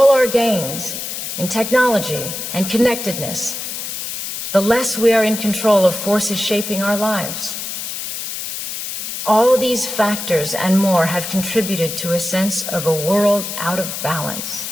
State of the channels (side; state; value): left; noise; hiss, 6 dB below the sound